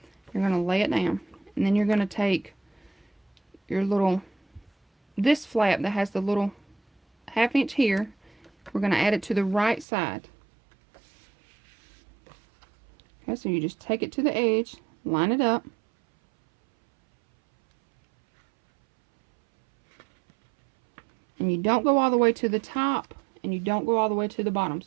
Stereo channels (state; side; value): drops out; left; at 9.9 s